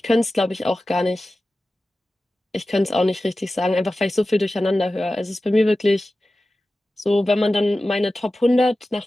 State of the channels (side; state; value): both; normal; correlation 0.95